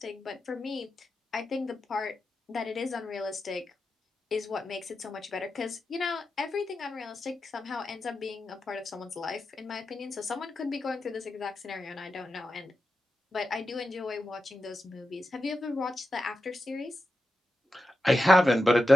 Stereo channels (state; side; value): normal; both; correlation 0.90